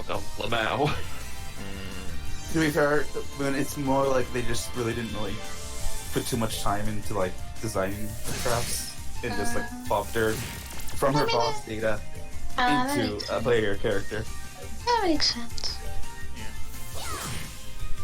Lamau. To be fair, when it's more like they just really didn't really put too much time into like designing the crafts and just like plopped her from her boss data into a player character. That makes sense.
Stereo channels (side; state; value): both; identical; correlation 1.00